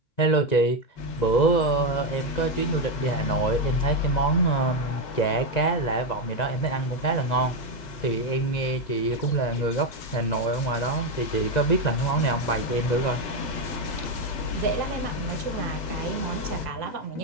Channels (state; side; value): late; right; 2.0 ms